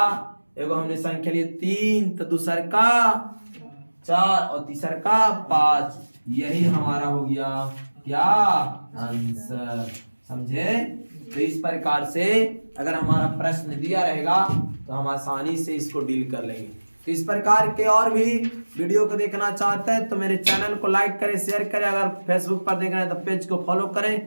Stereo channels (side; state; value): both; inverted; correlation -1.00